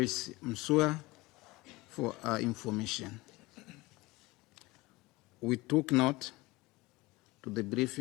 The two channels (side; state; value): right; quieter; 21.4 dB